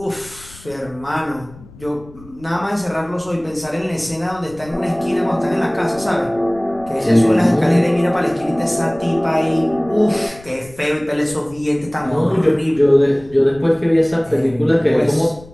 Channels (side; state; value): left; noise; rumble, 21 dB below the sound